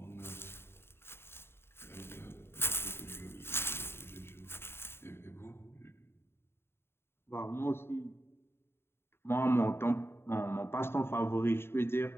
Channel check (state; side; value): late; right; 0.11 ms